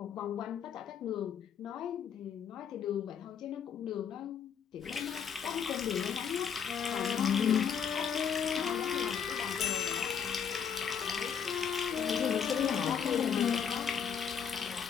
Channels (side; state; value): right; quieter; 7.6 dB